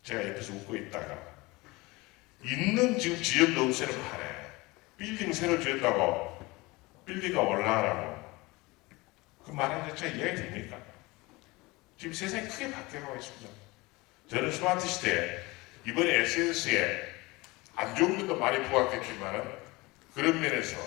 제가 옆에서 웃고 있다가 있는 지금 지역 노후세를 파네. 빌딩 새로 지었다고 빌딩가 올라가라고. 그 말하는 자체가 이해가 됩니까? 지금 세상이 크게 바뀌어가고 있습니다. 저는 스마트 시대에 이번에 SNS에 안 좋은 것도 많이 부각했지만 그런 면에서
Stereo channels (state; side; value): quieter; right; 22.9 dB